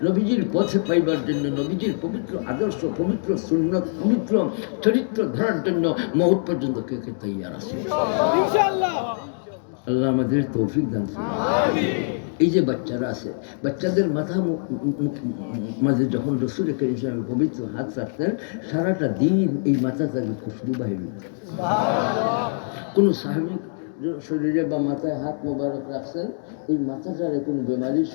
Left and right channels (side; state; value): right; silent; digital silence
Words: নবীজির পথে পাইবার জন্য, নবীজির পবিত্র আদর্শ, পবিত্র সুন্নত, পবিত্র চরিত্র ধরার জন্য মউত পর্যন্ত কে কে তৈয়ার আছে ইনশাআল্লাহ। আল্লাহ আমাদের তৌফিক দান করুন। এই যে বাচ্চারা আছে, বাচ্চাদের মাথা মাঝে যখন রসুল করিম সাল্লাল্লাহু আলাইহি ওয়াসাল্লাম পবিত্র হাত রাখতেন, সারাটা দিন এই মাথা থেকে খুশবু বাহির হতো। কোনো সাহাবী শরীরে বা মাথায় হাত মোবারক রাখছেন, এই মাথাটারে কোনো বেমারির